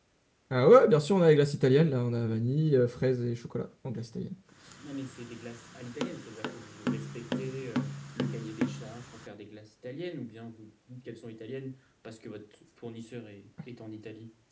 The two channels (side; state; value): both; identical; correlation 1.00